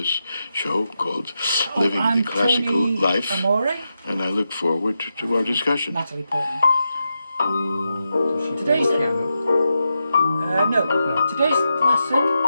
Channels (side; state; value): both; inverted; correlation -0.87